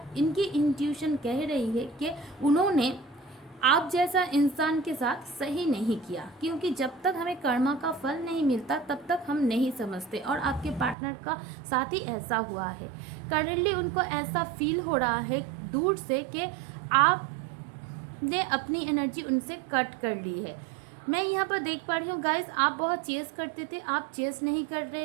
इनकी इंट्यूशन कह रही है कि उन्होंने आप जैसा इंसान के साथ सही नहीं किया, क्योंकि जब तक हमें कर्मा का फल नहीं मिलता तब तक हम नहीं समझते। और आपके पार्टनर का साथ ही ऐसा हुआ है। करेंटली उनको ऐसा फील हो रहा है दूर से कि आपने अपनी एनर्जी उनसे कट कर ली है। मैं यहाँ पर देख पा रही हूँ गाइस, आप बहुत चेस करते थे, आप चेस नहीं कर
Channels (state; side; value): drops out; left; at 11.0 s